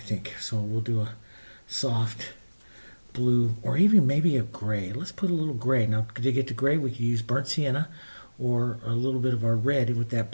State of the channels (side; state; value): both; inverted; correlation -1.00